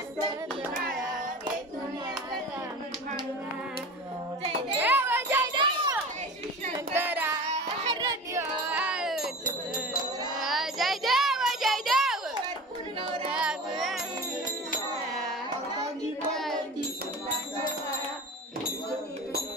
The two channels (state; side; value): normal; both; correlation 0.35